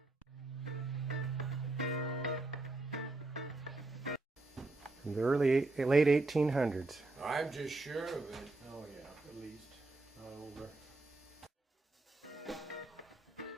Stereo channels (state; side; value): quieter; left; 3.1 dB